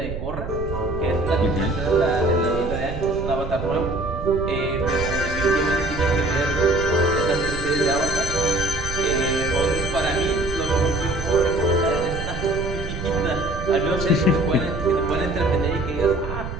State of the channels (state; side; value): noise; right; rumble, 7 dB below the sound